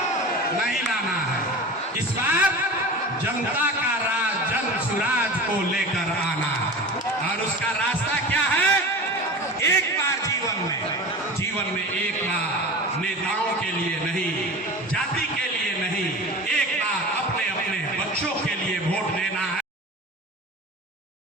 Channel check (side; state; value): both; normal; correlation 0.33